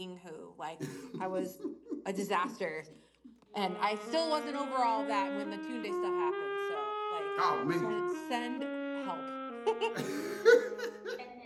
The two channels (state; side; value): identical; both; correlation 1.00